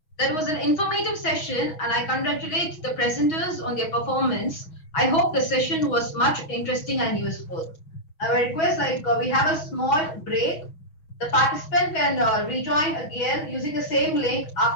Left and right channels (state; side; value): late; right; 6.3 ms